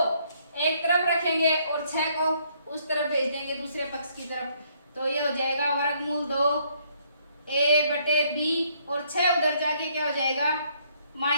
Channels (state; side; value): inverted; both; correlation -0.68